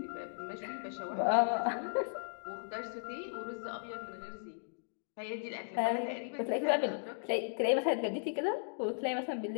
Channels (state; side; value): silent; right; digital silence